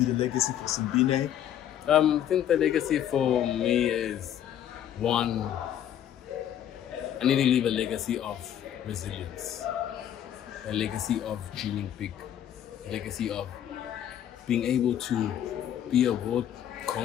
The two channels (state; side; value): quieter; right; 10.5 dB